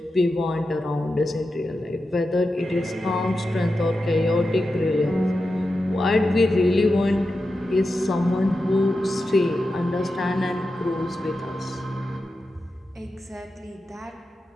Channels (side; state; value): both; normal; correlation 0.90